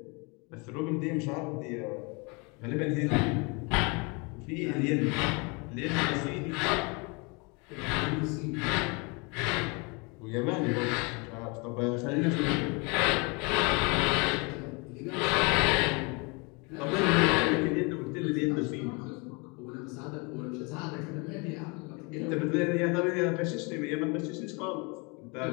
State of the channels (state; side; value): quieter; right; 30.3 dB